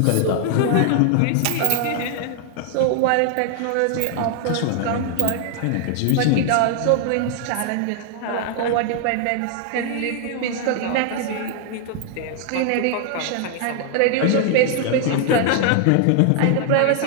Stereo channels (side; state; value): both; different; correlation 0.00